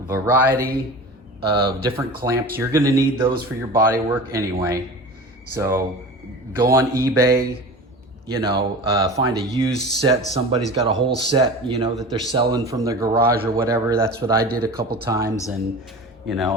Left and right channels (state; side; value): normal; both; correlation 0.34